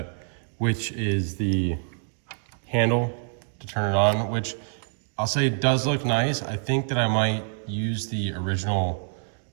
which is the handle to turn it on, which I'll say does look nice. I think that I might use the original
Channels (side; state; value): left; silent; digital silence